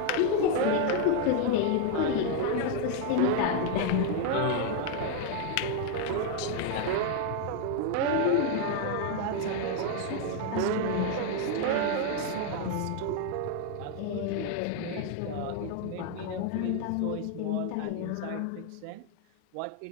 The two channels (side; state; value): both; different; correlation 0.01